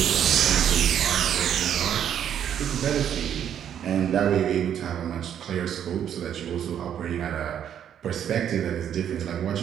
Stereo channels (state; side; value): quieter; left; 9.5 dB